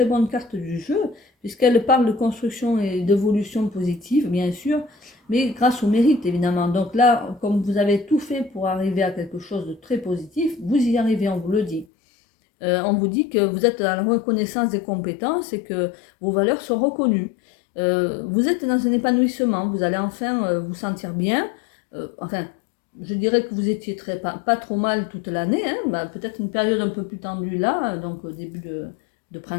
bonnes cartes du jeu, puisqu'elle parle de construction et d'évolution positive, bien sûr, mais grâce au mérite évidemment. Donc là, comme vous avez tout fait pour arriver à quelque chose de très positif, vous y arrivez, on vous le dit. On vous dit que vous êtes dans la reconnaissance des compétences et que vos valeurs sont reconnues. Vous êtes dans un épanouissement, vous allez enfin vous sentir bien. Enfin, je dirais que vous étiez pas trop mal toute l'année, hein, bah, peut-être une période un peu plus tendue là, donc au début de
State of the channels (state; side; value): drops out; right; at 11.9 s